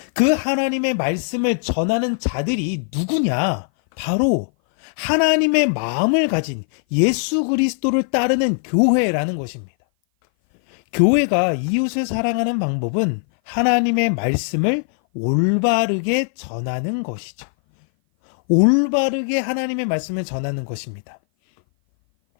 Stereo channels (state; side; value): silent; right; 57 dB below the other